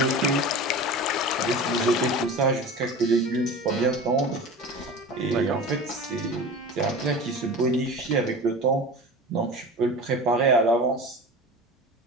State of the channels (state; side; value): normal; both; correlation 0.34